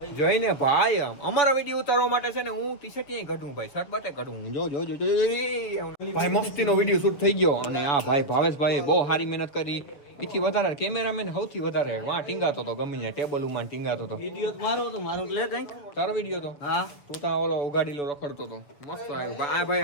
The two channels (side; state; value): right; late; 7.0 ms